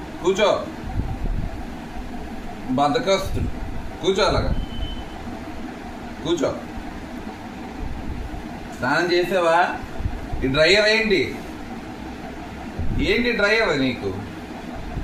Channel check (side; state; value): both; identical; correlation 1.00